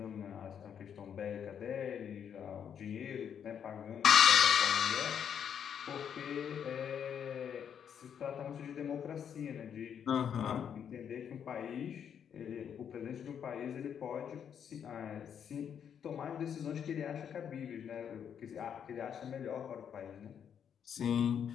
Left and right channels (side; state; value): right; quieter; 8.2 dB